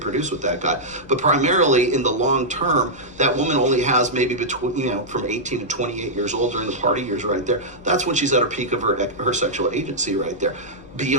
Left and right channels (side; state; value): left; noise; rumble, 25 dB below the sound